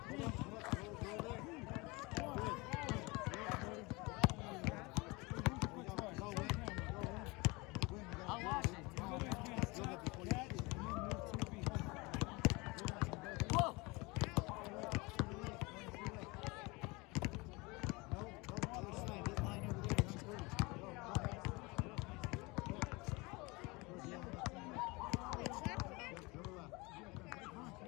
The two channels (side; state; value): right; quieter; 25.2 dB